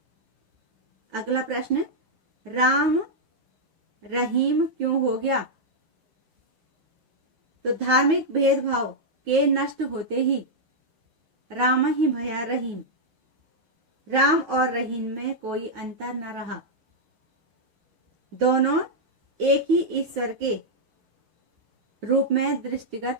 अगला प्रश्न, राम रहीम क्यों हो गया, तो धार्मिक भेदभाव के नष्ट होते ही राम ही भया रहीम, राम और रहीम में कोई अंतर न रहा, दोनों एक ही ईश्वर के रूप में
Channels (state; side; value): late; left; 8.7 ms